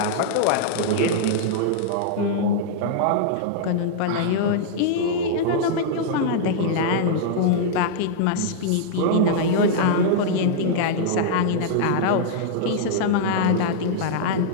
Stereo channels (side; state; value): both; different; correlation -0.01